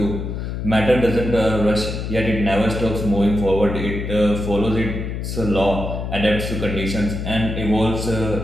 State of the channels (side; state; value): left; noise; hum, 4 dB below the sound